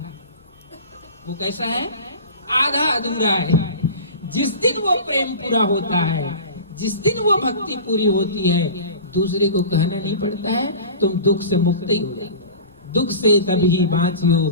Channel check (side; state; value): both; inverted; correlation -0.36